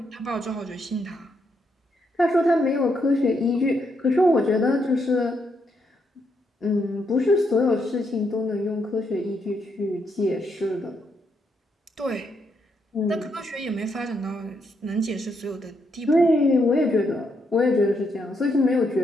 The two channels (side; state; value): both; normal; correlation 0.78